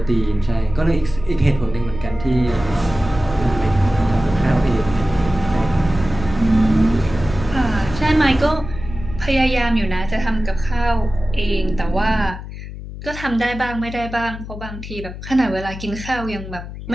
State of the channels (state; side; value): noise; left; hum, 11 dB below the sound